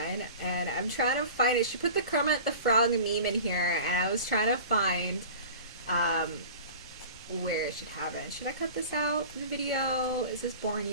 And I'm trying to find it. She put the Kermit the Frog meme in here, and I was trying to find where it should have it. Should I cut this out in the video? Is this boring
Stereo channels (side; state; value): both; inverted; correlation -0.38